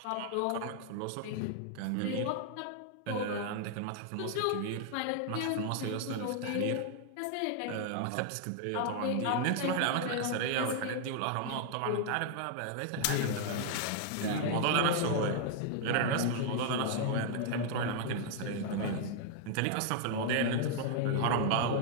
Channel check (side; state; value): both; different; correlation 0.00